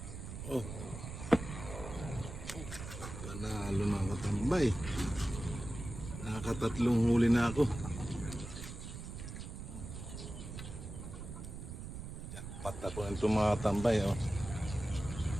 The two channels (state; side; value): noise; right; rumble, 9 dB below the sound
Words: Panalo mga katambay. Nakatatlong huli na ako. Jackpot ako nito mga katambay.